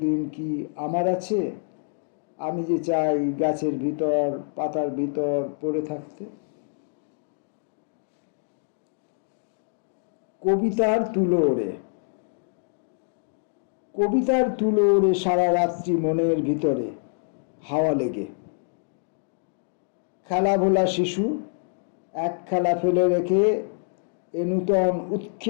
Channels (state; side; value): silent; right; digital silence